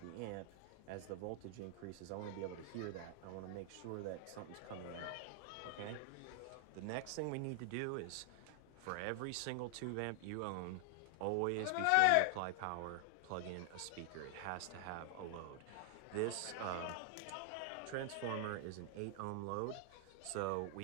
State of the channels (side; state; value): both; different; correlation 0.00